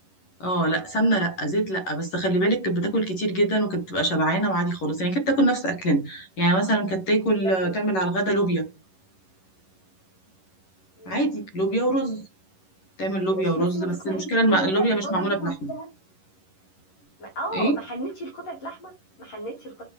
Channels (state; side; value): late; right; 11 ms